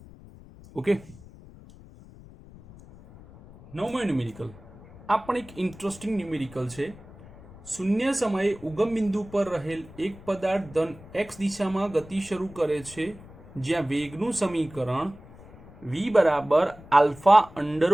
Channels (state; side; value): noise; left; rumble, 20 dB below the sound